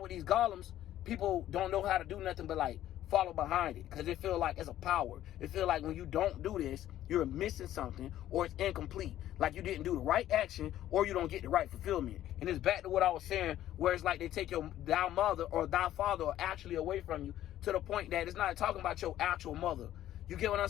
with these golems, people don't know how to do nothing but like follow behind it because it feel like it's a power. It feel like when you don't do this, you're missing something or it's incomplete. Like you didn't do the right action or you don't get the right fulfillment. And it's back to what I was saying, where it's like they take thy mother or thy father actually away from you to the point that it's not talking about your actual mother. You get what I'm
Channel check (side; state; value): right; quieter; 12.8 dB